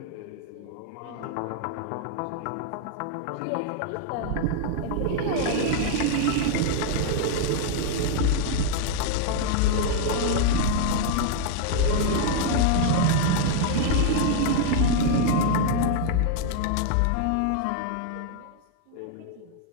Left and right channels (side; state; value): both; different; correlation 0.00